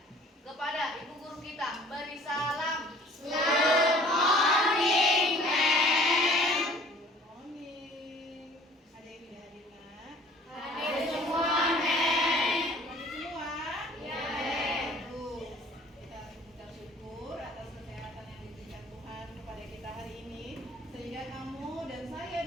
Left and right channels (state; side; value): normal; both; correlation 0.52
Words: Kepada ibu guru kita beri salam. Good morning, ma'am. Good morning. Ada yang tidak hadir, Nak? Hadir semua, ma'am. Hadir semua? Ya, ma'am. Bagus. Kita mengucap syukur atas kesehatan yang diberikan Tuhan kepada kita hari ini, sehingga kamu dan saya